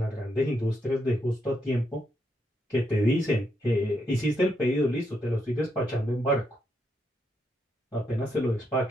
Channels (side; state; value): both; normal; correlation 0.80